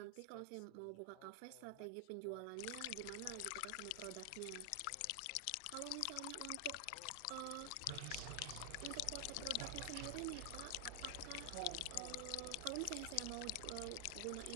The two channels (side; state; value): both; different; correlation 0.00